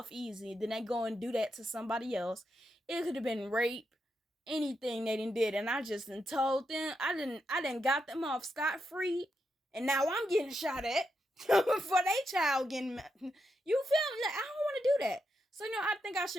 easy. Then they go and do that to somebody else. It could have been rape, anything they did, and I just told them I didn't got them off scot free, and now I'm getting shot at. for their child getting, you feel me? Like, I don't want to do that. So, I think I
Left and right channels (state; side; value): normal; both; correlation 0.84